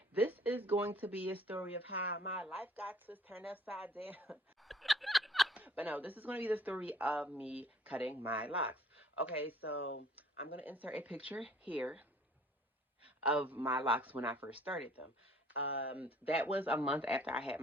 This is going to be a story of how my life got turned upside down. But no, this is going to be the story of me cutting my locks. Okay, so I'm going to insert a picture here of my locks when I first started them. That was a month after I had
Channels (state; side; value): normal; both; correlation 0.55